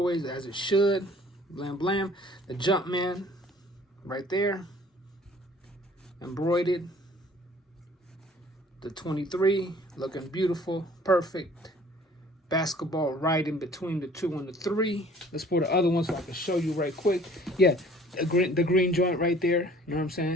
as it should. Blam. The Jumpman right there, embroidered. The 23 looking beautiful, perfect. Basketball right in between the 2 and the 3. Let's pull the other one so I can show you right quick. Yeah, the green joint right there. You know what I'm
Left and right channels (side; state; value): both; normal; correlation 0.53